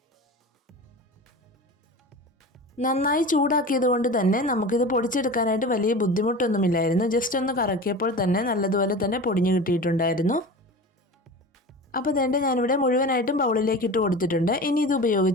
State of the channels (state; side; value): normal; both; correlation 0.33